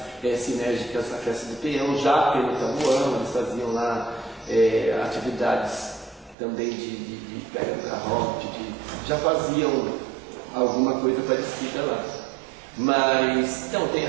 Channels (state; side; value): drops out; left; at 6.4 s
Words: sinérgicas à festa do peão, já pelo Tabuão, eles faziam lá atividades também de pega do garrote, já faziam alguma coisa parecida lá. Mas, então, tem